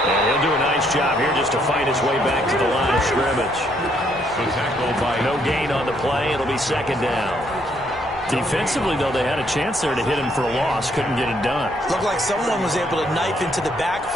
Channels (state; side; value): normal; both; correlation 0.70